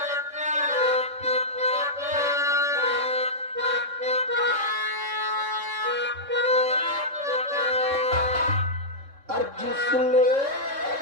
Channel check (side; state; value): left; late; 3.6 ms